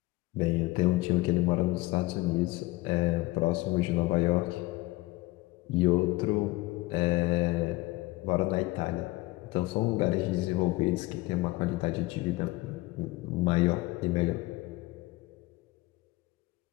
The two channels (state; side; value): quieter; right; 20.5 dB